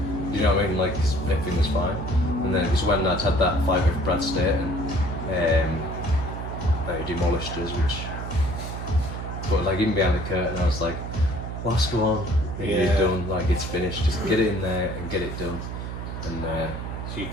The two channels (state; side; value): noise; right; hum, 6 dB below the sound